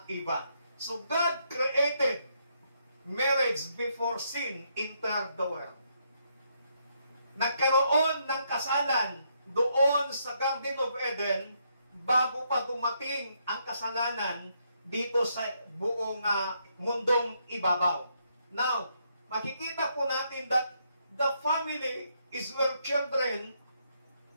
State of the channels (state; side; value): inverted; both; correlation -0.75